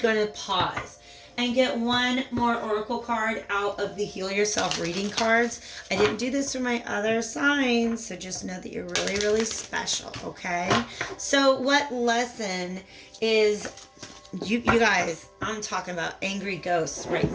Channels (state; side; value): identical; both; correlation 1.00